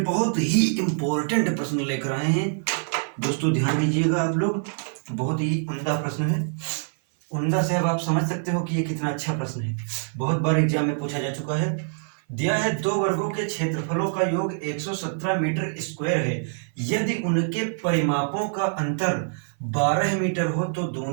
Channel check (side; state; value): left; silent; 57 dB below the other